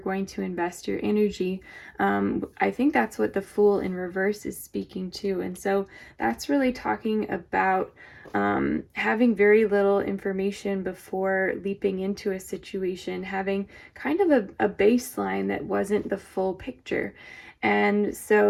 to invest your energy. I think that's what the Fool in reverse is speaking to. And so that's really talking about having very little information before leaping into a situation, having kind of a baseline that wasn't the full picture. And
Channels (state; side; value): identical; both; correlation 1.00